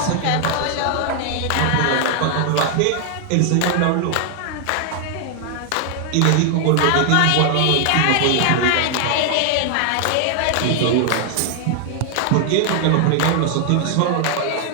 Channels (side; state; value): both; different; correlation 0.00